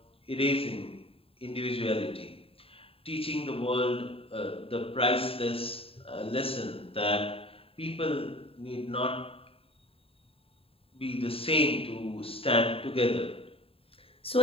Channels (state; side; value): late; right; 0.27 ms